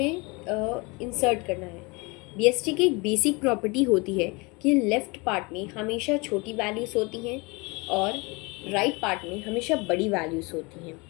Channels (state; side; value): quieter; right; 27.2 dB